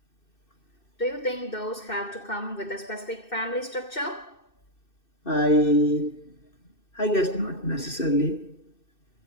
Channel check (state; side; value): late; right; 2.6 ms